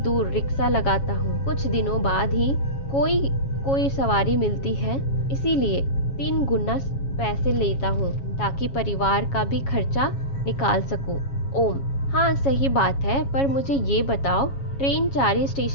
रिक्शा लगाता हूँ। कुछ दिनों बाद ही कोई सवारी मिलती है, इसीलिए 3 गुना पैसे लेता हूँ ताकि परिवार का भी खर्चा निकाल सकूं। ओम, हाँ सही बात है, पर मुझे ये बताओ ट्रेन चारी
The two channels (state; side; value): late; right; 7.3 ms